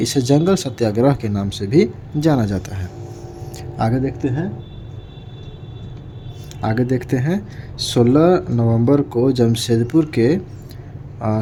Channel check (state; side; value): identical; both; correlation 1.00